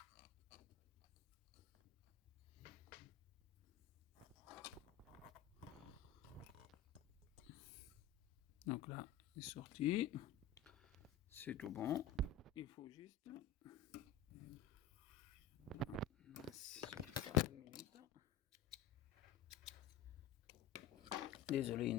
Donc là, c'est sorti. C'est tout bon. Il faut juste... Désolé,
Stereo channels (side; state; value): right; quieter; 7.9 dB